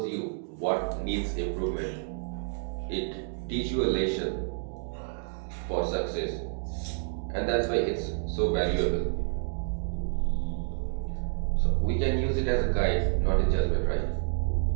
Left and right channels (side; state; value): left; silent; digital silence